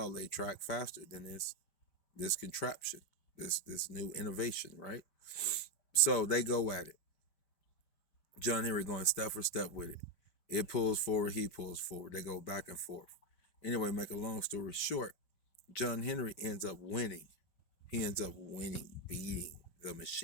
lay track faster than this contraption, this new innovation, right?" So they go at it. John Henry going step for step with it. It pulls forward, he pulls forward. They go back and forth. Anyway, make a long story short, John Henry ends up winning. He ends up winning, beating the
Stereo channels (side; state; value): right; late; 5.1 ms